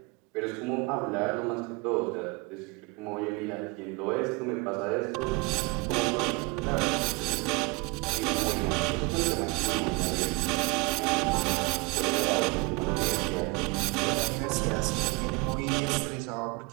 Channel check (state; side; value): quieter; left; 26.8 dB